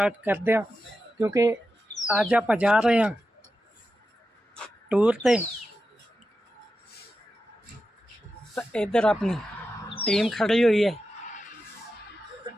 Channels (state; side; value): normal; both; correlation 0.90